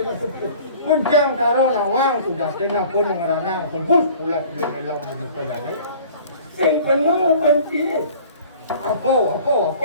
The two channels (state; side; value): inverted; both; correlation -0.48